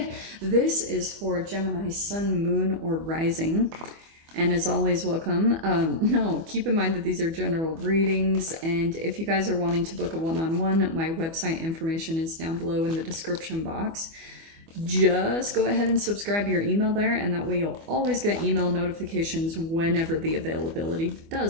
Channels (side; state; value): left; late; 24 ms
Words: This is for Gemini sun, moon, or rising. And as always, welcome. Keep in mind that these are general readings. And if you guys are wanting to book a one-on-one, my website information is down below in the description box. Just go ahead and subscribe your email there, and that way you'll always get email notifications whenever the availability